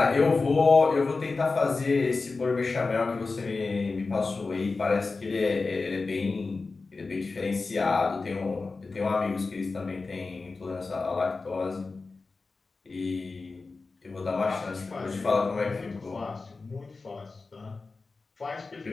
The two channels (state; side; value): quieter; right; 4.0 dB